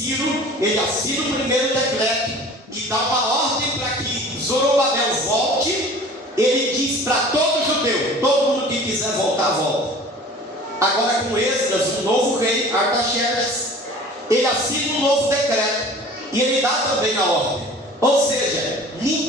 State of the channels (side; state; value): both; normal; correlation 0.44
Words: ele assina o primeiro decreto e dá uma ordem para que Zorobabel volte. Ele diz para todo judeu: todo mundo que quiser voltar, volta. Agora com Esdras, o novo rei Artaxerxes, ele assina um novo decreto e ele dá também a ordem. Ou seja,